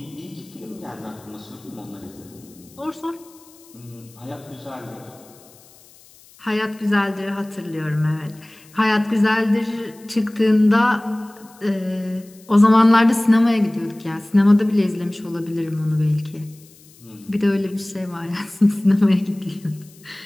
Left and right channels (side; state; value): left; noise; hiss, 26 dB below the sound